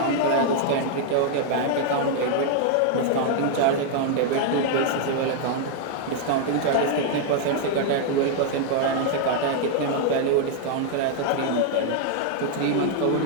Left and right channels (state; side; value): different; both; correlation 0.00